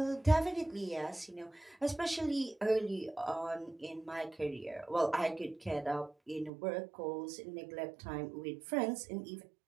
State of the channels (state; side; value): drops out; left; at 6.5 s